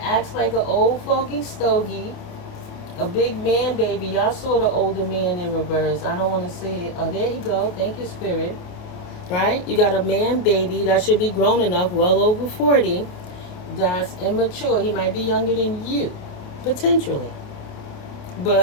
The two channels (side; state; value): right; late; 28 ms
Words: acts like an old fogey stogie. A big man baby. Y'all saw the older man in reverse. I don't want to say it. Oh, there you go. Thank you, Spirit. Right? You got a man baby that should be grown enough, well over 40. That's immature. He might be younger than you, potentially.